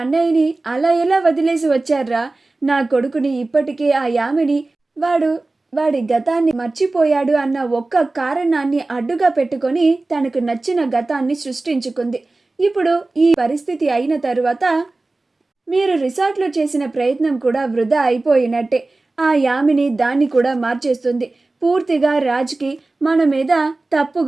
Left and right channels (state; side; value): quieter; left; 3.2 dB